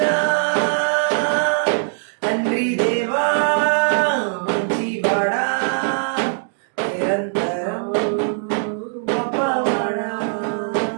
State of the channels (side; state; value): left; silent; digital silence